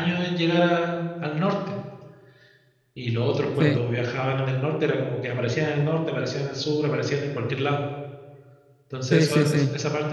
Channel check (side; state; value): both; identical; correlation 1.00